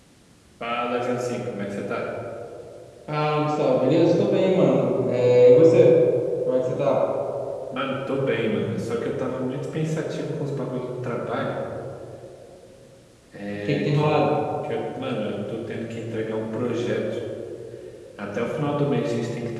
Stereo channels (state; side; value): identical; both; correlation 1.00